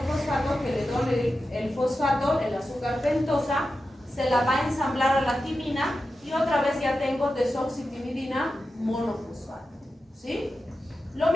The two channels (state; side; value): normal; both; correlation 0.91